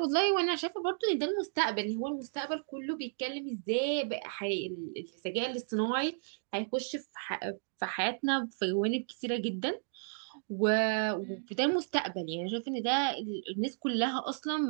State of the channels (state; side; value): silent; left; digital silence